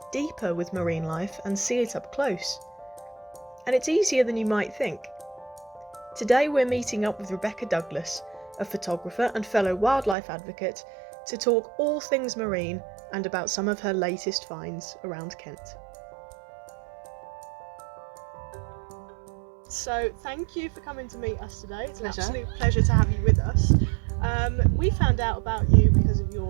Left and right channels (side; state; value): left; drops out; at 10.2 s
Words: deeper with marine life and see it up close. And it's easier than you might think. Today we're meeting up with Rebecca Douglas, a photographer and fellow wildlife advocate, to talk all things marine and about some of her latest finds around Kent. So thank you for coming to meet us today. It's an absolute pleasure to have you with us. We found out about you because of